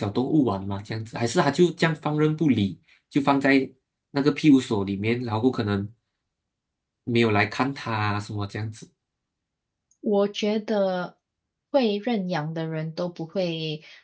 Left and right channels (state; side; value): identical; both; correlation 1.00